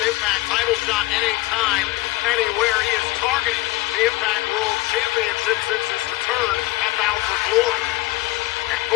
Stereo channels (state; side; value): quieter; right; 19.5 dB